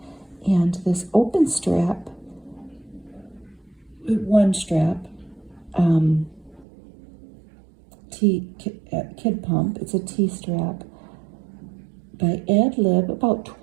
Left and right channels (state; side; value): drops out; left; at 6.7 s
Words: And this open strap, one strap, Kid Pump. It's a T-strap by Ad Lib, about